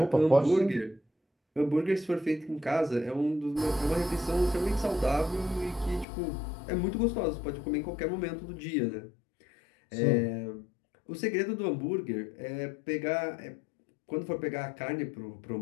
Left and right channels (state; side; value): drops out; right; at 6.1 s